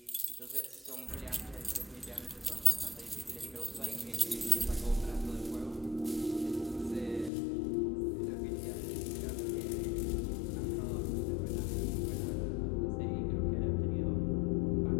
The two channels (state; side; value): drops out; right; at 7.3 s